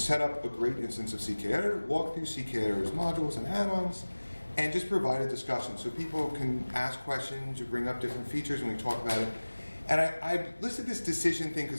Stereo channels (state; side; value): inverted; both; correlation -1.00